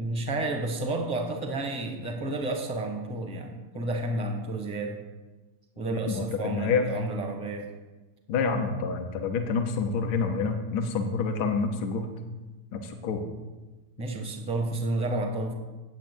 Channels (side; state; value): right; late; 7.7 ms